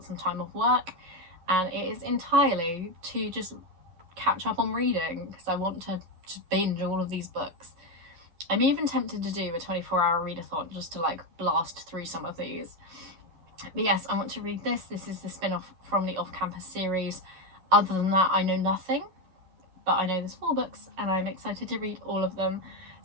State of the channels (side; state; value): left; late; 11 ms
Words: some time off work and it is entirely to just catch up on reading, because I want to just binge all of these books. I'm even tempted to do a 24-hour readathon just to like blast through some of these. But yes, I want to read this. This is the spin-off from the off-campus series. Other than that, I know nothing, but I know there's 4 books and I'm excited to read all of them.